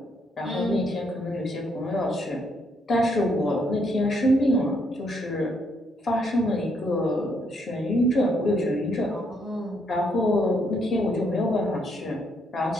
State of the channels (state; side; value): normal; both; correlation 0.73